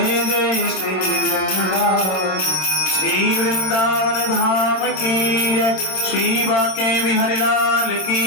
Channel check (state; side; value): late; right; 26 ms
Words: जय श्री वृंदावन। श्री वृंदावन धाम की जय, श्री बाके बिहारी लाल